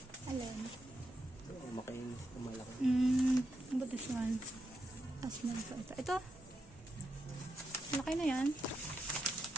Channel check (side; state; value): both; normal; correlation 0.84